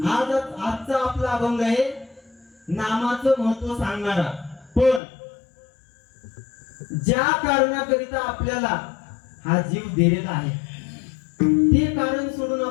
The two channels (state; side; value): drops out; right; at 5.0 s